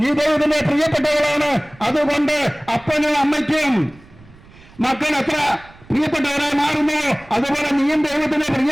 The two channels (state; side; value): noise; right; rumble, 24 dB below the sound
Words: നീ ദൈവത്തിന്റെ പ്രിയപ്പെട്ടവളാണ്. അതുകൊണ്ട് അപ്പനും അമ്മയ്ക്കും മക്കൾ എത്ര പ്രിയപ്പെട്ടവരായി മാറുന്നു, അതുപോലെ നീയും ദൈവത്തിന്